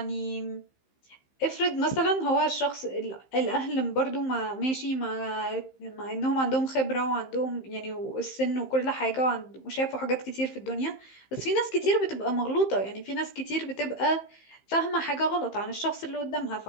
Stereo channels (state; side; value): late; right; 15 ms